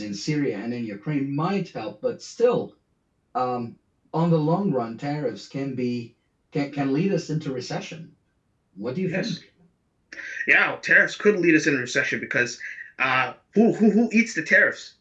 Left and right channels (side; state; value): both; identical; correlation 1.00